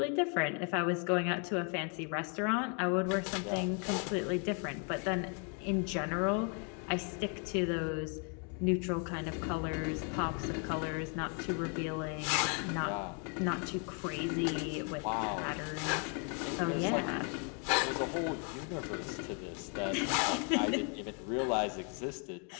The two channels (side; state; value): right; quieter; 38.6 dB